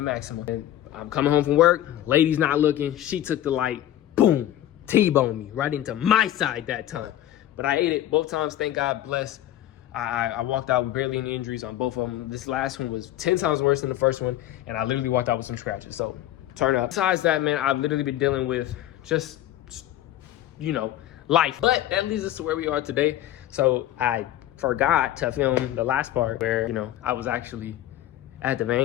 Maxima. And I'm coming home from work, lady's not looking. She took the light, boom, T-boned me right into my side that time. But I ate it both times, thank God, bless. I walked out with barely any injuries on both of them. This last one was 10 times worse than the first one, and I literally walked out with some scratches, so turn up. Besides that, man, I've literally been dealing with just, life. But that leads us to where we are today. So I forgot to film the last part where, I was actually at the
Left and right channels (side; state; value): right; quieter; 13.0 dB